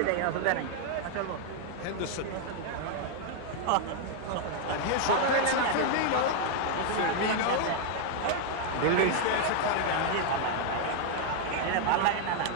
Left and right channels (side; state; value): both; different; correlation 0.00